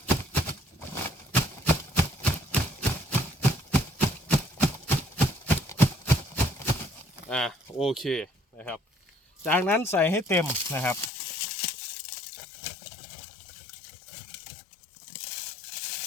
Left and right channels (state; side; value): drops out; right; at 11.1 s